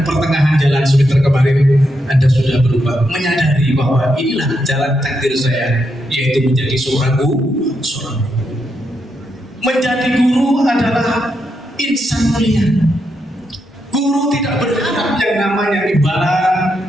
pertengahan jalan semester kemarin Anda sudah berubah, menyadari bahwa inilah jalan takdir saya, yaitu menjadi seorang guru. Menjadi guru adalah insan mulia. Guru tidak berharap yang namanya imbalan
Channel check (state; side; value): normal; both; correlation 0.82